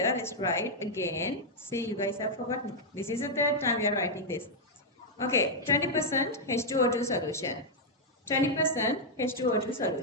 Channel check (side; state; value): both; normal; correlation -0.03